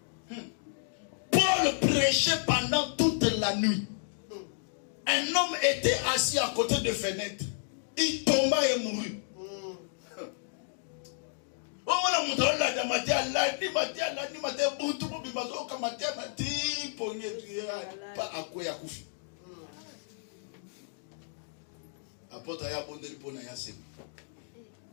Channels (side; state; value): right; silent; digital silence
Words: Paul prêchait pendant toute la nuit. Un homme était assis à côté de fenêtre. Il tomba et mourut.